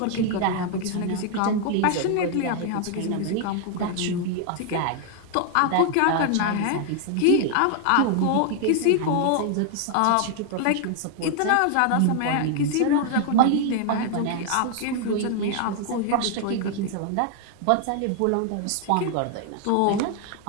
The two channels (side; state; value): both; different; correlation 0.00